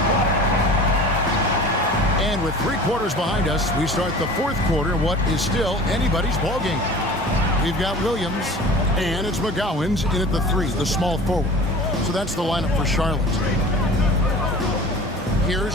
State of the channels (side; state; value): both; normal; correlation 0.41